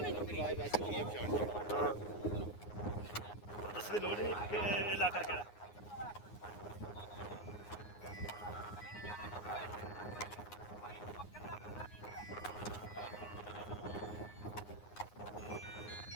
ਨਹੀਂ ਚੁੱਕਣੀ ਹਾਂ ਦੱਸ ਦੀ ਲੋੜ ਨਹੀਂ ਕਿ ਇਹ ਇਲਾਕਾ ਕਿਹੜਾ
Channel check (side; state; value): right; late; 9.6 ms